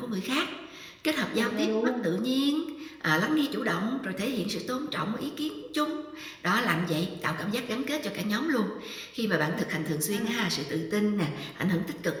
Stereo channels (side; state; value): both; identical; correlation 1.00